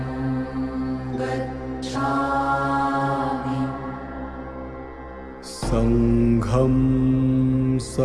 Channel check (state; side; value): identical; both; correlation 1.00